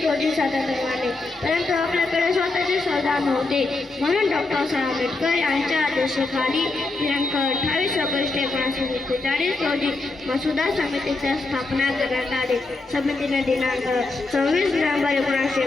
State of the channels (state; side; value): quieter; right; 3.3 dB